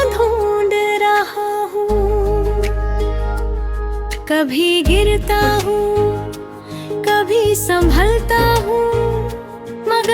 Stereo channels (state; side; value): identical; both; correlation 1.00